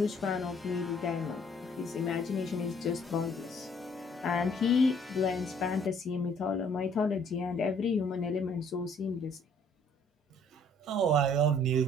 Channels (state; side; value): normal; both; correlation 0.60